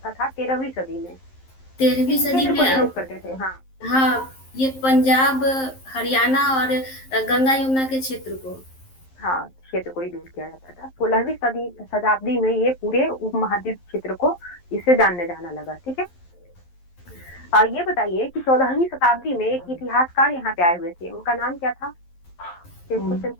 था 13वीं सदी में? 13वीं सदी में प्रयोग करते थे। हाँ हाँ, ये पंजाब, हरियाणा और गंगा यमुना के क्षेत्र को, हाँ, क्षेत्र को ही यूज किया जाता था। 16वीं शताब्दी में ये पूरे उपमहाद्वीप क्षेत्र को इससे जानने जाना लगा। ठीक है। ये बताइए कि 14वीं शताब्दी में एक इतिहासकार यहाँ पे आए हुए थे, उनका नाम क्या था? क्वेश्चन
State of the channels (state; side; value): late; right; 11 ms